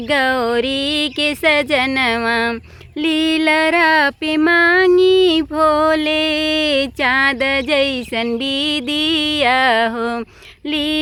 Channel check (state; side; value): identical; both; correlation 1.00